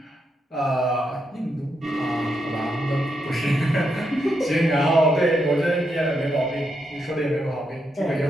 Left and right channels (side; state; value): both; normal; correlation 0.81